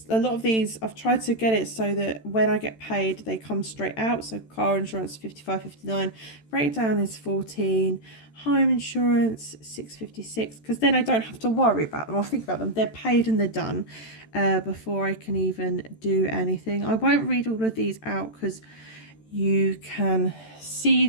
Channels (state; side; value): late; right; 13 ms